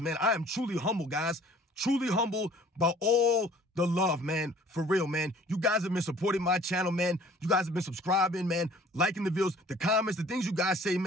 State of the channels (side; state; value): both; normal; correlation 0.52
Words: man. I am truly humble, guys. Truly humble by all the love, man. For real, man. You guys have been supporting my channel, man. You guys have been subscribing, man, liking the videos, the comments, the things you guys say,